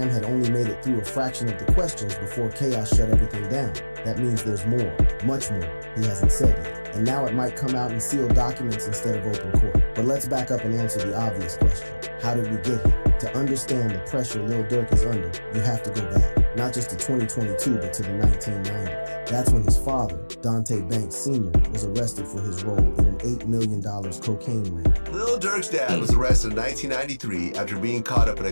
had only made it through a fraction of the questions before chaos shut everything down. That means there's more, much more, he hasn't said yet. And now it might come out in sealed documents instead of open court. But let's back up and answer the obvious question. How did we get here? To understand the pressure Lil Durk is under, you have to go back. Not just to 2022, but to the 1990s. That's when his father, Dante Banks Sr., was arrested for his role in an $8 million cocaine ring. Lil Durk's dad was arrested in 1993 after being caught up in a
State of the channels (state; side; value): inverted; both; correlation -1.00